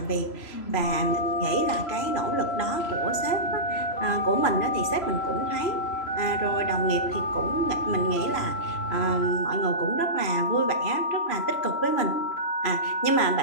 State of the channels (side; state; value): right; late; 3.0 ms